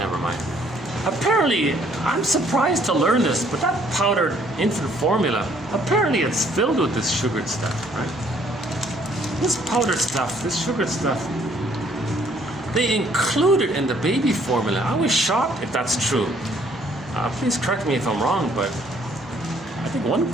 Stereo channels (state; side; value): normal; both; correlation 0.63